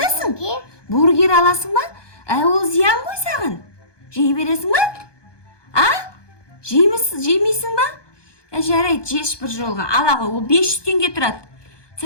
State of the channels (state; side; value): late; right; 1.2 ms